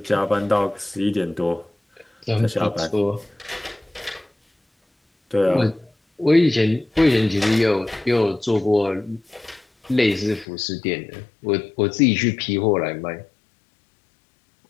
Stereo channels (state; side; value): drops out; right; at 10.5 s